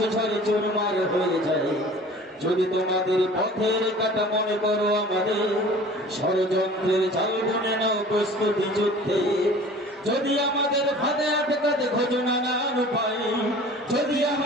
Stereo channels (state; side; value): normal; both; correlation 0.44